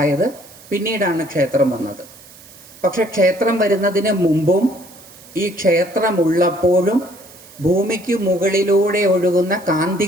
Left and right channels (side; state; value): right; noise; hiss, 22 dB below the sound